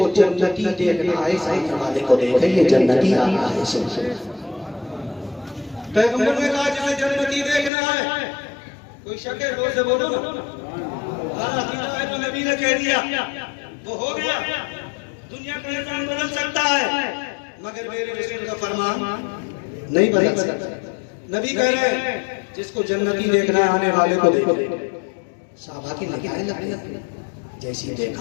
जन्नती देखना है सामने वाले को देखे, ये जन्नती आ रहा है। पैगंबर ने कहा जिसे जन्नती देखना है, कोई शक है? जोर से बोलो ना। तो नबी ने कह दिया वो हो गया, दुनिया का निजाम बदल सकता है मगर मेरे रसूल का फरमान नहीं बदल सकता। नबी कह रहे हैं जिसको जन्नती देखना है आने वाले को देखो। साहबा की निगाहें लगी, जैसी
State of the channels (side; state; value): right; drops out; at 7.7 s